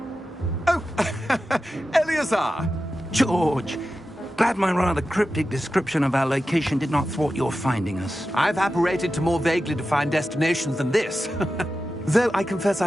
Oh, Eleazar! George, glad my rather cryptic description of our location did not thwart your finding us. I've apparated to more vaguely defined destinations than this. Though I confess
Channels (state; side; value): normal; both; correlation 0.92